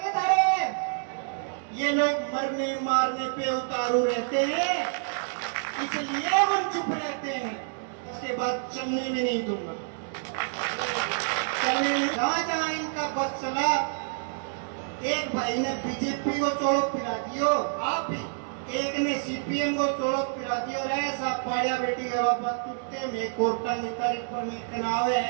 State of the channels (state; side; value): silent; left; 59 dB below the other